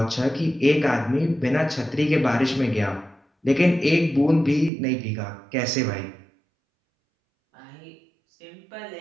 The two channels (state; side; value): drops out; left; at 4.7 s